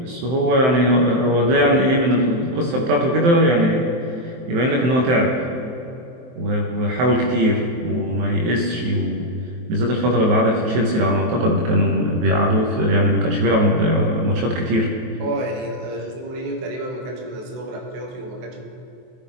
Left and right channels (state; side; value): late; left; 23 ms